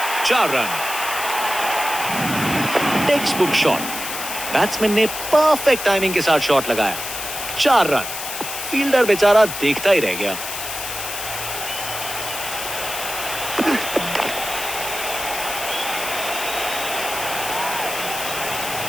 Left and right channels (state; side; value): noise; left; hiss, 6 dB below the sound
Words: 4 run. Text book shot. Batsman ने परफेक्ट टाइमिंग के साथ शॉट लगाया। 4 रन। फील्डर बेचारा देखता ही रह गया।